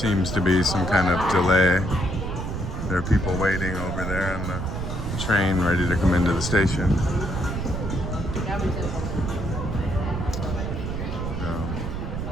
to be some kind of delay. There are people waiting over there on the train ready to come into the station.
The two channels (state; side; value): noise; right; rumble, 4 dB below the sound